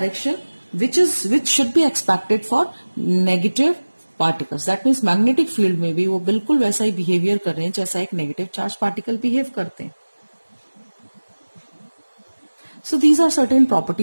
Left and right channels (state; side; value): inverted; both; correlation -1.00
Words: which should be expected for negative particles. That means magnetic field में भी वो बिल्कुल वैसा ही behavior कर रहे हैं जैसा एक negative charge particle behave करते हैं. So these are certain